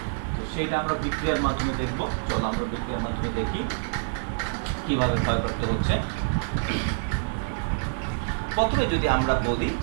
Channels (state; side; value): silent; left; digital silence